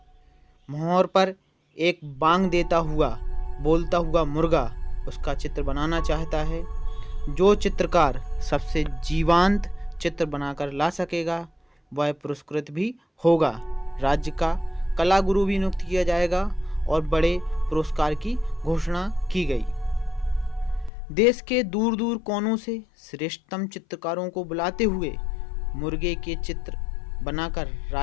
मोहर पर एक बांग देता हुआ बोलता हुआ मुर्गा उसका चित्र बनाना चाहता है। जो चित्रकार सबसे जीवंत चित्र बनाकर ला सकेगा वह पुरस्कृत भी होगा। राज्य का कला गुरु भी नियुक्त किया जाएगा और बड़े पुरस्कार की घोषणा की गई। देश के दूर दूर कोनों से श्रेष्ठतम चित्रकारों को बुलाते हुए मुर्गे के चित्र बनाकर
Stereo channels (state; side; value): drops out; right; at 20.9 s